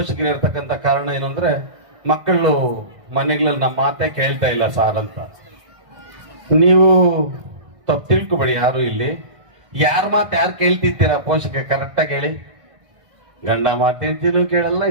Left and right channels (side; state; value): left; late; 1.6 ms